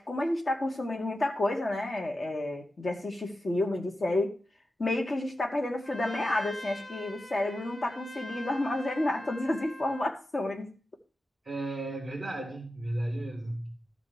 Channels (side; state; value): both; normal; correlation 0.91